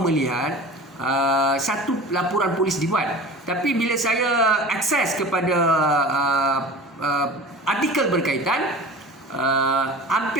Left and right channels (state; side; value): normal; both; correlation 0.38